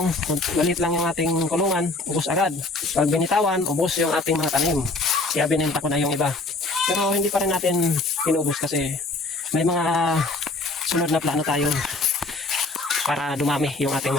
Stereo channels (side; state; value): right; quieter; 3.1 dB